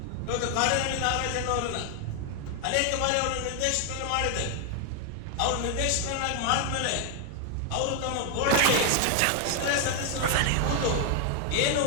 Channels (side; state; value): both; different; correlation 0.00